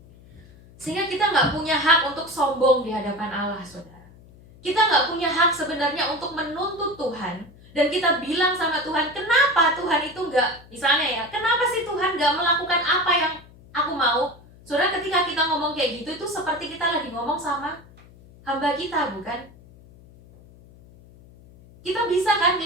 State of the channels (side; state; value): left; noise; hum, 23 dB below the sound